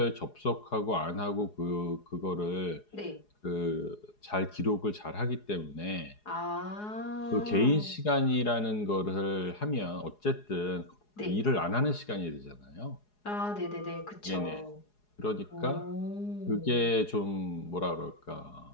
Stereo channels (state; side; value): late; right; 4.8 ms